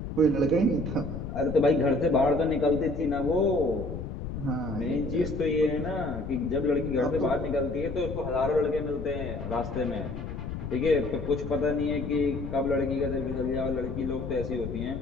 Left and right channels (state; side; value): noise; left; rumble, 7 dB below the sound